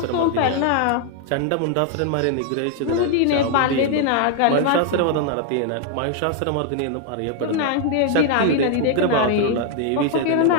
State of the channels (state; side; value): different; both; correlation 0.00